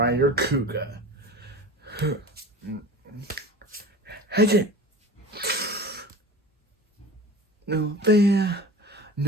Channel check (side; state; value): both; normal; correlation 0.36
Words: Kuuga. Heisei. No fear,